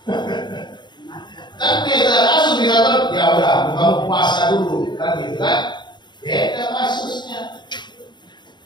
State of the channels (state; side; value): late; right; 0.22 ms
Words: Kan biasa kasus bisa ya udah kamu puasa dulu, kan gitu kan? Beda kasusnya.